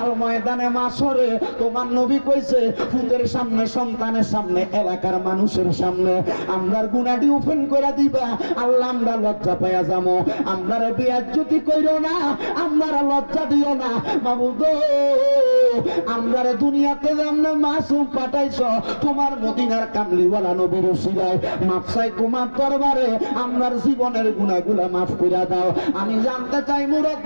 ময়দানে মাশরে তোমার নবী কইছে, ফুতের সামনে, সন্তানের সামনে, এলাকার মানুষের সামনে আমরার গুনাহটি ওপেন করে দিবা। আল্লাহ, আমরা লজ্জা পাইয়া যাবো। আমরারে বেয়াজ্জতি কইরো না, আমরারে লজ্জা দিও না মাবুদ। আমরারে দুনিয়াতে যেমন মাসুম পাঠাইছো, তোমার মদিনার কামলিওয়ালা নবীর উসিলায় মাফ চাই তোমার দরবারে। আমরার জীবনের গুনাহগুলা মাফ করে দাও। আমি জানতে চাই,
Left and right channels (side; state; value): both; inverted; correlation -1.00